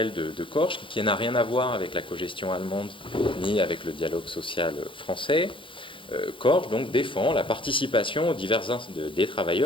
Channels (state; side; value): late; right; 0.25 ms